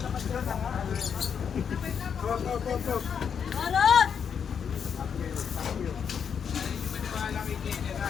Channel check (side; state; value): right; quieter; 7.2 dB